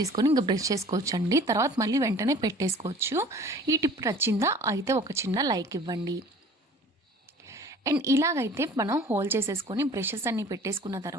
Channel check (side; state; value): both; normal; correlation 0.47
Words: ఇంకా బ్రష్ చేసుకోవచ్చు అండి. తర్వాత మళ్ళీ వెంటనే పెట్టేసుకోవచ్చు. ఈ టిప్ నచ్చిందా అయితే ఒక చిన్న లైక్ ఇవ్వండి. అండ్ ఇలాగైతే మనం హోల్ చేసేసుకొని బ్రషెస్ అన్నీ పెట్టేసుకున్న